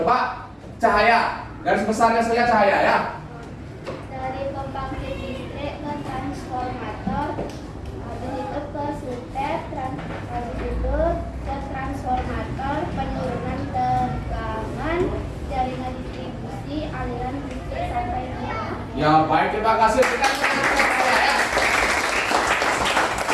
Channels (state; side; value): identical; both; correlation 1.00